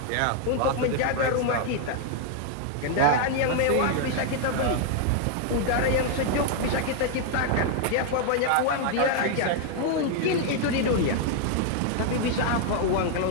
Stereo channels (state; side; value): different; both; correlation 0.00